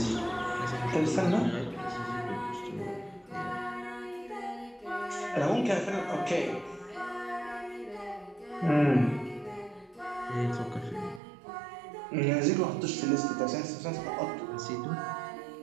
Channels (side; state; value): left; drops out; at 11.2 s